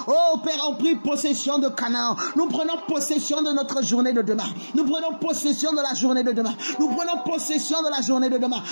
oh Père, ont pris possession de Canaan. Nous prenons possession de notre journée de demain. Nous prenons possession de la journée de demain. Nous prenons possession de la journée de demain.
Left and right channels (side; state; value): both; inverted; correlation -1.00